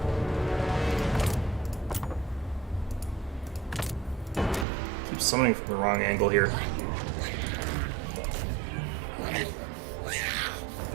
Keep summoning from the wrong angle here.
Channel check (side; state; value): left; drops out; at 4.7 s